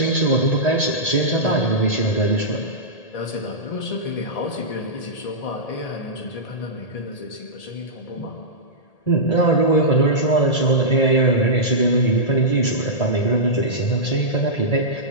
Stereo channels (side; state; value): right; late; 1.8 ms